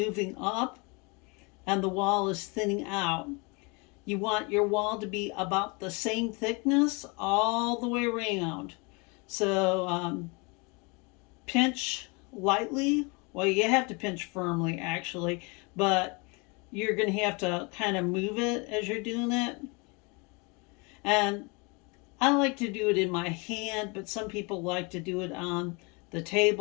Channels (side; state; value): right; quieter; 29.8 dB